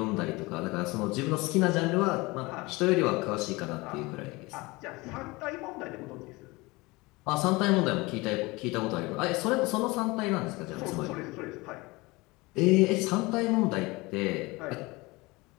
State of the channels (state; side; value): quieter; right; 23.3 dB